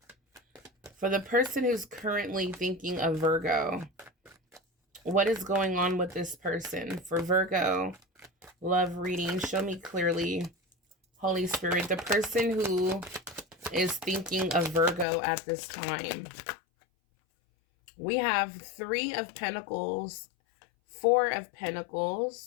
for the person who's currently thinking of Virgo, what is going on with this person? For Virgo, love reading, show me clearly, Holy Spirit, the person who is thinking of Virgo at this time. We have 3 of Pentacles, 4 of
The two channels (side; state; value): right; drops out; at 15.1 s